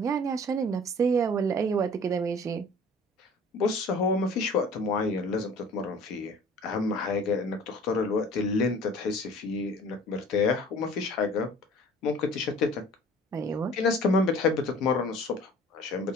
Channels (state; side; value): normal; both; correlation 0.47